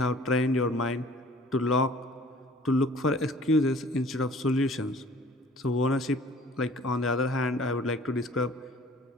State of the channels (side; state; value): both; normal; correlation 0.51